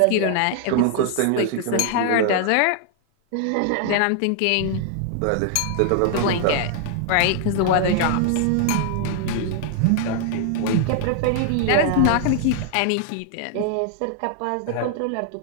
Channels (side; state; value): both; different; correlation 0.00